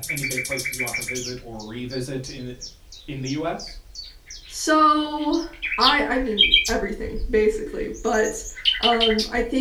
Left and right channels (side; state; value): both; identical; correlation 1.00